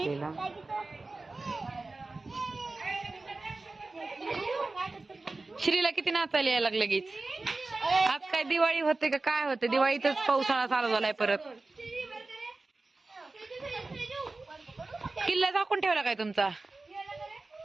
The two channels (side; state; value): left; quieter; 3.4 dB